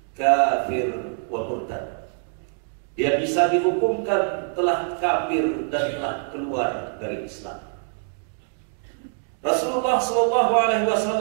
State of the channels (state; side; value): silent; left; 61 dB below the other